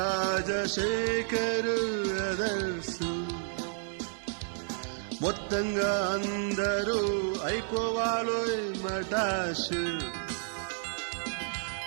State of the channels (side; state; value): left; silent; digital silence